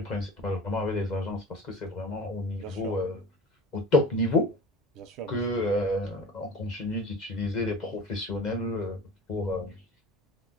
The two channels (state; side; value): normal; both; correlation 0.37